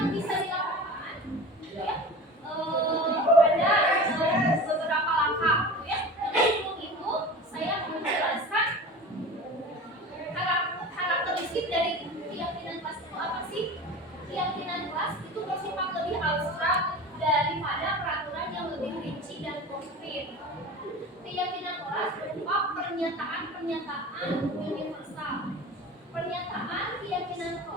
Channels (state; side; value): normal; both; correlation 0.35